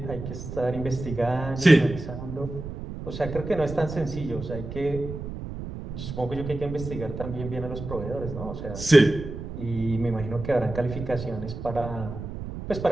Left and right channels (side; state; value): right; noise; rumble, 8 dB below the sound